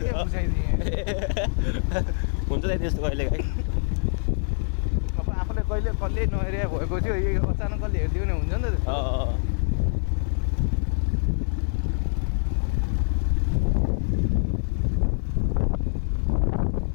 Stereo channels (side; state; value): right; silent; digital silence